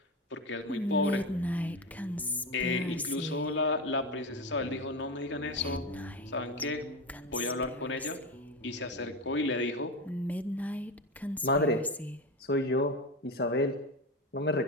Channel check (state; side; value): normal; both; correlation 0.19